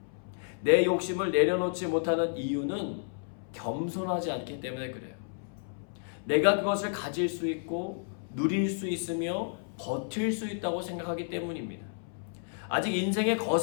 내 욕심을 내려놓지 못하는 이유는 겸손하지 않기 때문에 그래요. 내가 그것을 가질 수 있고 누릴 수 있으며 버틸 수 있다고 생각하기 때문입니다. 아직 인생에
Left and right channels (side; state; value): right; silent; 57 dB below the other